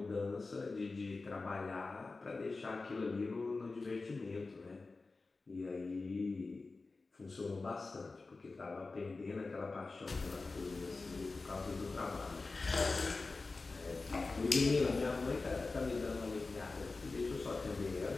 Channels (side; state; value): right; quieter; 3.7 dB